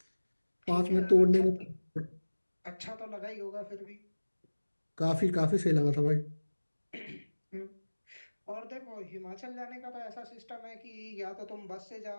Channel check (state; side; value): inverted; both; correlation -1.00